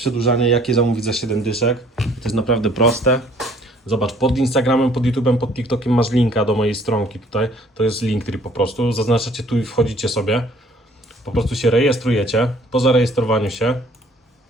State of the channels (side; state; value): both; normal; correlation 0.58